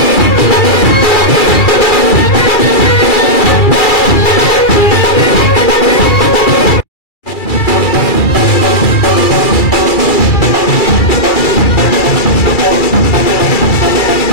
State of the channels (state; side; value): late; right; 2.3 ms